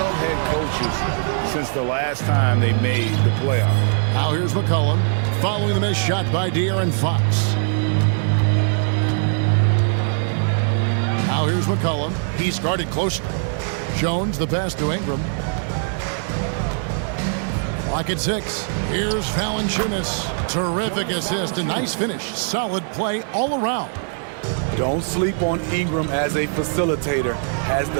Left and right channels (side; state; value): left; silent; 63 dB below the other